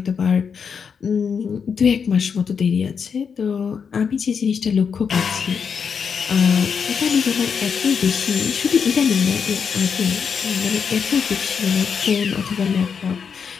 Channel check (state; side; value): quieter; right; 6.4 dB